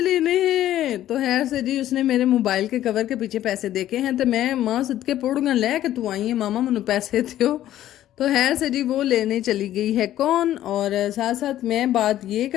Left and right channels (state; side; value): quieter; right; 12.8 dB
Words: लेने हैं। तो खैर से जी उसने मेरे मोबाइल के कवर के पीछे पैसे देखे हैं, तो मैं माँ सदके पौड़ूंगा ले के तू आई है मामा मैनू पैसे दो। तो खैर से जी वो लेने चली गई है कौन। और साथ साथ मैं बात ये